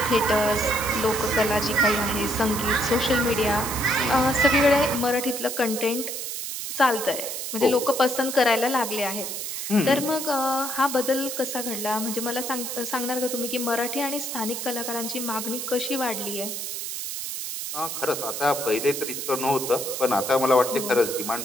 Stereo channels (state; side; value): noise; right; hiss, 5 dB below the sound